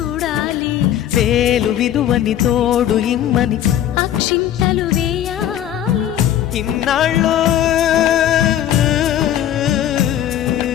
వేలు విలువని తోడు ఇమ్మని అక్షింతలు వేయాలి. ఇన్నాళ్ళు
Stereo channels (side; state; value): right; quieter; 11.2 dB